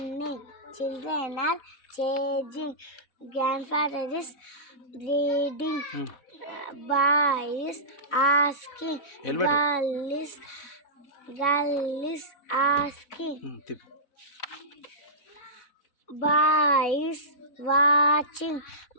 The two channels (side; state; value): right; late; 4.0 ms